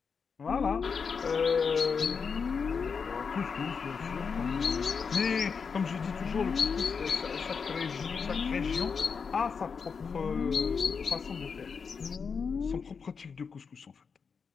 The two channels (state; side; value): quieter; right; 5.7 dB